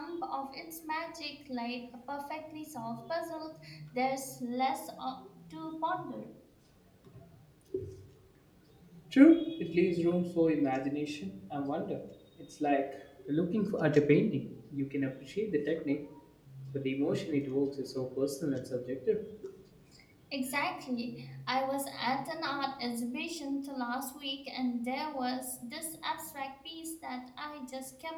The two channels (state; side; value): identical; both; correlation 1.00